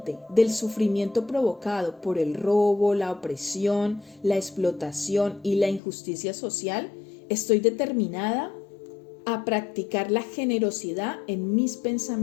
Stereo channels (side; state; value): right; drops out; at 5.8 s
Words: del sufrimiento provocado por el robo, la opresión, la explotación y la injusticia social, estoy determinada a practicar la generosidad en mis